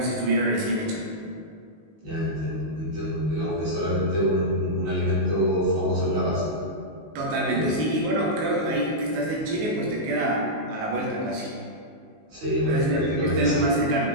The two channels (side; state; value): left; late; 19 ms